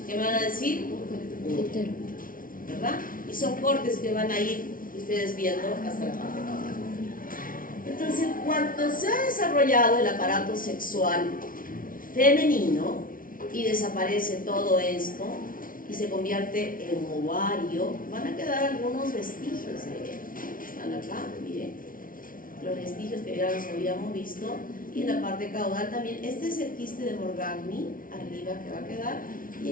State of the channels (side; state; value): right; late; 0.40 ms